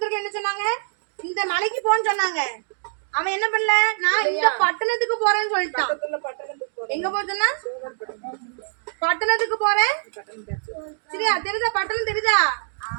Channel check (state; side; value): silent; left; digital silence